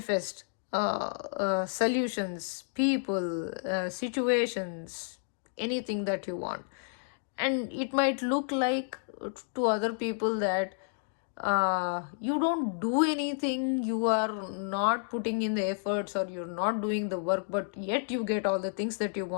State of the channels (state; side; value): silent; right; digital silence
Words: solutions, people, situations, anything that you want. And it might look like to other people that you don't do anything, you are not putting in the efforts, or you're not doing the work, but yet you get all the things that you